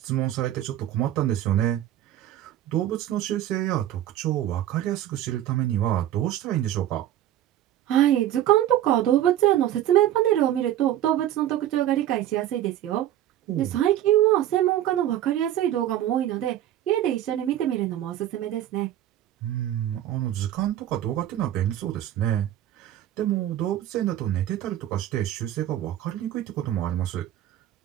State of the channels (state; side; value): quieter; left; 12.4 dB